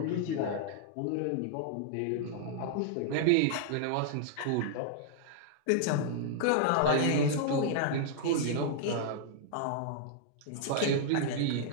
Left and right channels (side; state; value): both; different; correlation -0.01